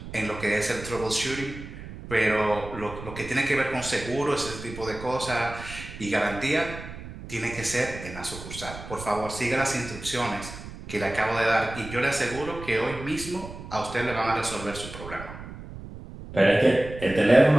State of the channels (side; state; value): right; noise; rumble, 12 dB below the sound